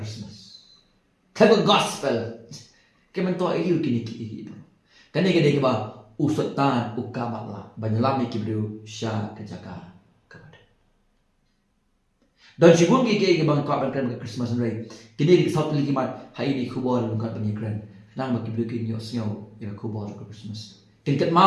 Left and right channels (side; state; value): both; identical; correlation 1.00